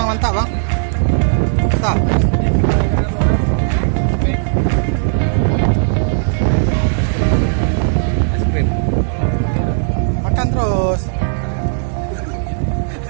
Mantap bang? Mantap. Es krim. Makan terus.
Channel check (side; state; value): left; silent; digital silence